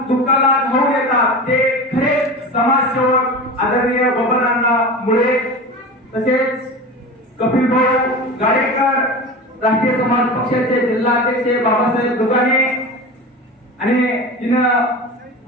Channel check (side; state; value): both; normal; correlation 0.30